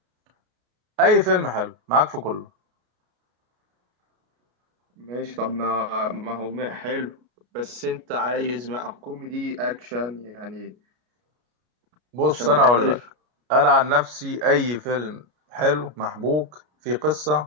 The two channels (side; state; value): left; late; 33 ms